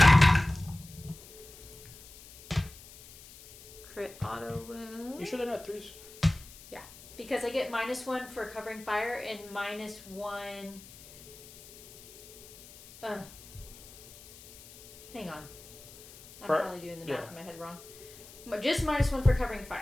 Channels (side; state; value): left; noise; hiss, 19 dB below the sound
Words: Crit auto wound. You sure they're not 3s? Because I get -1 for covering fire and -1. Hang on. I'm probably doing the math in my head wrong. But just -1 for covering